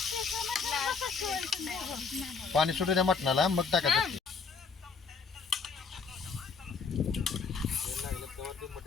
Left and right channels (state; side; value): quieter; right; 5.1 dB